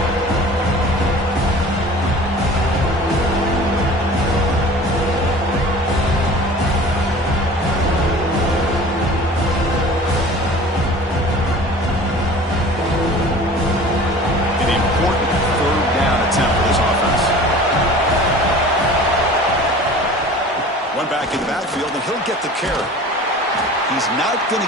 Back in the backfield, and he'll get the carry. He's not going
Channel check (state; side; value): normal; both; correlation 0.42